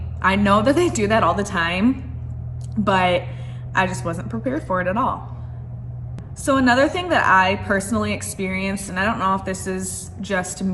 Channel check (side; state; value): both; identical; correlation 1.00